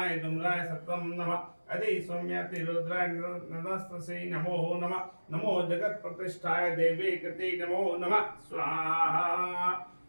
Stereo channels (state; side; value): inverted; both; correlation -1.00